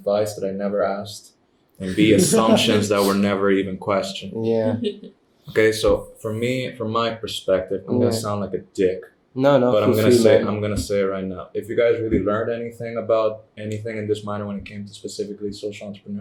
that I never asked, and B, assumptions that were never even questioned. Yeah. Okay, so for me, from my perspective, I'm gonna Yeah. sound like a dick, No, but I'm feel gonna free, say man. it right now. If you guys really learned anything about anything in this minor when it came to specifically social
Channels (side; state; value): both; identical; correlation 1.00